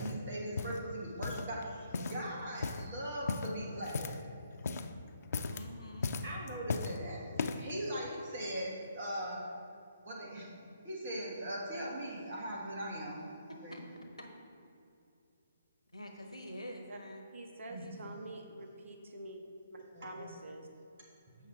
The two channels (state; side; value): inverted; both; correlation -0.72